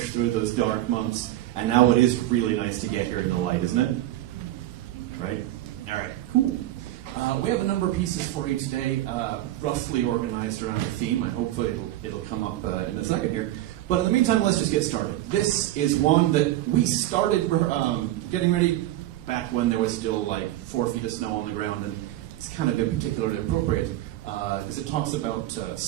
through those dark months, and now it is really nice to get here in the light, isn't it? Right? All right, cool. We have a number of pieces for you today, roughly organized around the theme, and hopefully it'll come up in a second here. But in the meantime, let's just get started. This is one that we started getting ready back when there was still like 4 feet of snow on the ground, and it's kind of been particularly appropriate because it talks about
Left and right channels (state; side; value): quieter; left; 14.6 dB